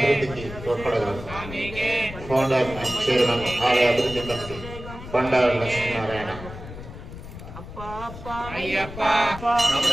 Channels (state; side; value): noise; left; rumble, 12 dB below the sound